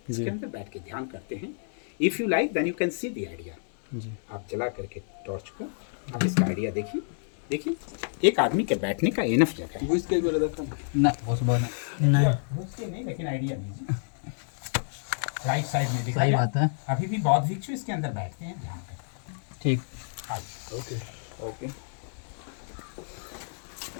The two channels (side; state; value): right; silent; digital silence